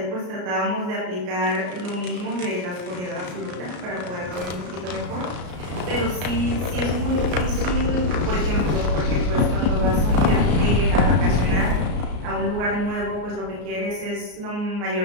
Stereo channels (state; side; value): late; left; 33 ms